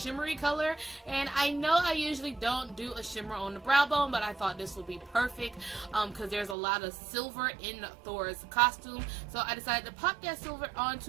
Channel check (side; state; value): left; drops out; at 6.6 s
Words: color, and I know I usually don't do a shimmer on the brow bone, but I thought this would be perfect because there's a lot of silver in Thor's costume, so I decided to pop that silver